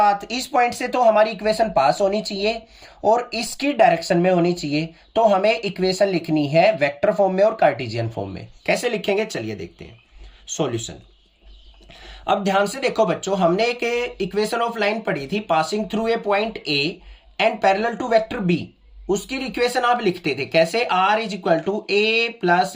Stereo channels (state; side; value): identical; both; correlation 1.00